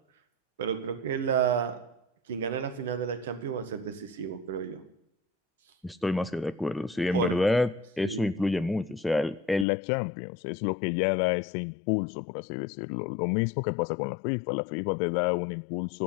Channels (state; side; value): drops out; right; at 9.7 s